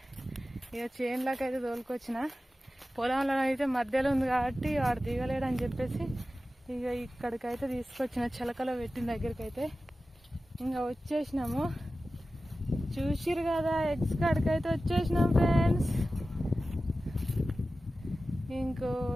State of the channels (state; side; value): normal; both; correlation 0.95